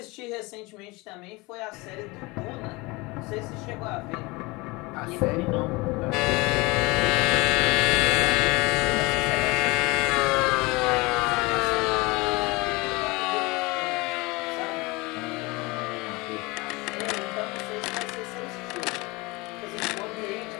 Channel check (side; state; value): right; quieter; 24.3 dB